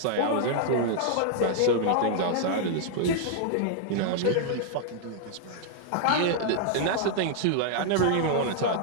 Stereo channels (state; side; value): different; both; correlation -0.01